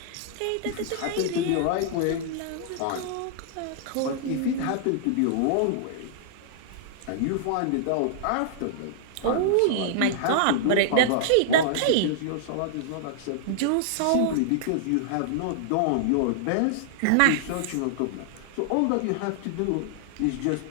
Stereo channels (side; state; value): both; different; correlation -0.01